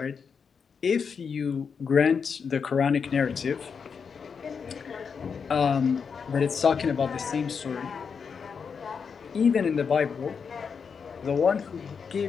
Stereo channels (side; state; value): right; quieter; 6.1 dB